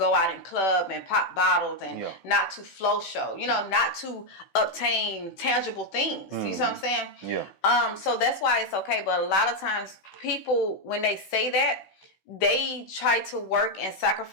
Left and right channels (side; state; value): right; late; 16 ms